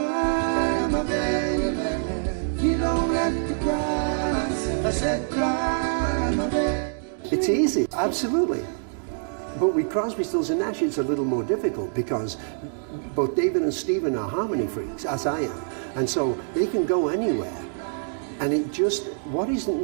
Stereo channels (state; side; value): silent; left; digital silence